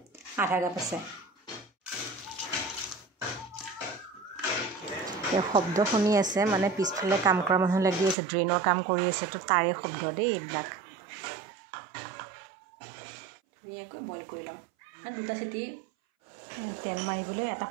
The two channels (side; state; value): left; drops out; at 8.2 s